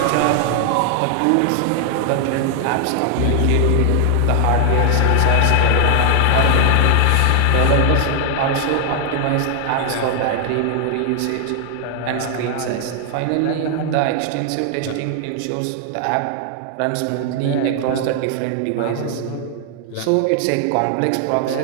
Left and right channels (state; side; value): different; both; correlation 0.00